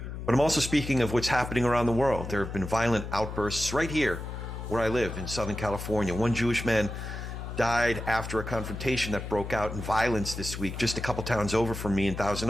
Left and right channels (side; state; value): left; noise; hum, 7 dB below the sound